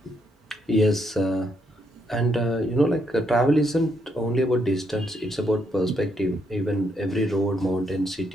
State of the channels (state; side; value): normal; both; correlation 0.76